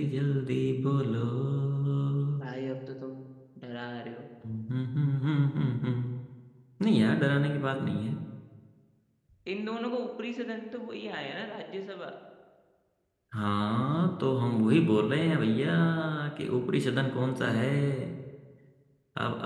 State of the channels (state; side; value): identical; both; correlation 1.00